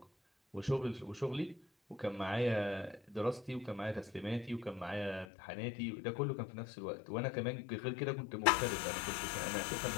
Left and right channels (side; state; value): right; drops out; at 5.2 s